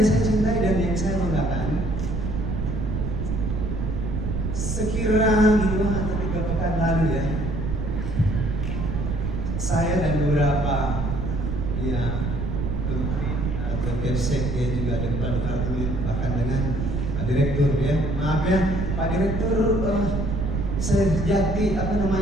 saya cintai dan yang saya banggakan, sekira 2 atau 3 pekan lalu saya dan beberapa menteri atau Kepsek juga ada kepala departemen, bahkan dengan Pak Direktur maaf Pak Direktur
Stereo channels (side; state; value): right; noise; rumble, 2 dB below the sound